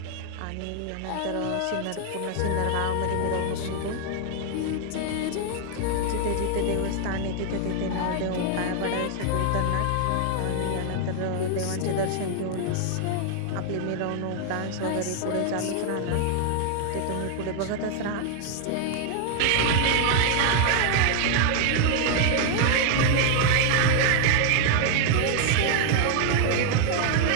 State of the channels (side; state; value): both; different; correlation 0.00